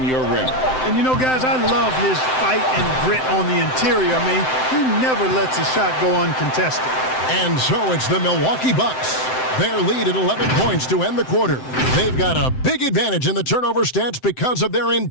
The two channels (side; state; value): right; late; 7.8 ms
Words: your rim. And you know, guys, I love his fight and grit on the interior. I mean, he never lets a shot go uncontested. And so it's the Milwaukee Bucks. Their lead at 11 points to end the quarter. They've got a big advantage in the turnover stats because of their